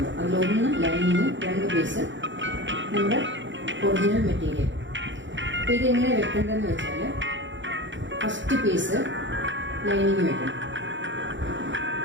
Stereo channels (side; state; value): left; late; 0.54 ms